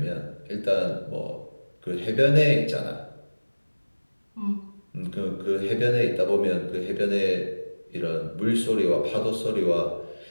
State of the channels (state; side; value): inverted; both; correlation -1.00